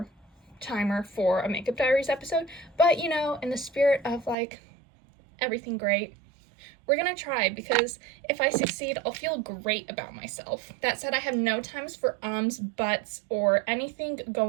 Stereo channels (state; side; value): drops out; left; at 4.4 s